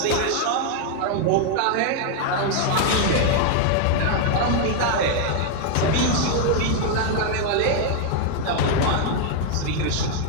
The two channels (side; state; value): both; different; correlation 0.00